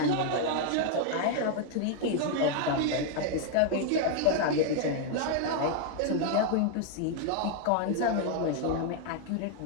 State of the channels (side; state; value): both; different; correlation 0.00